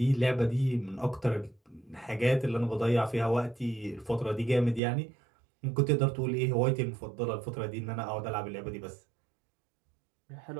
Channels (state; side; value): drops out; left; at 4.8 s